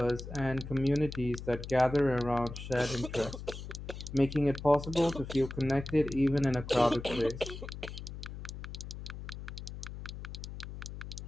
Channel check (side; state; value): left; noise; hum, 10 dB below the sound